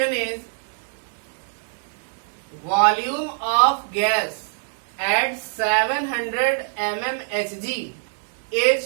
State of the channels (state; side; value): silent; left; 63 dB below the other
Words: is volume of gas at 700 mmHg